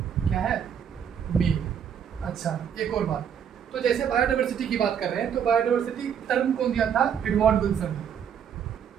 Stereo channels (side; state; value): left; quieter; 8.2 dB